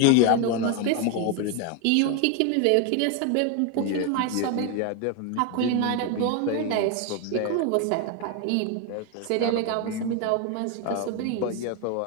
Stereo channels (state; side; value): different; both; correlation 0.01